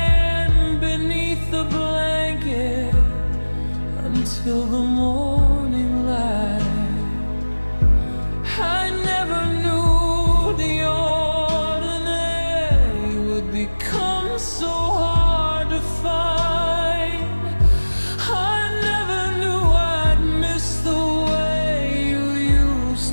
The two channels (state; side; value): inverted; both; correlation -1.00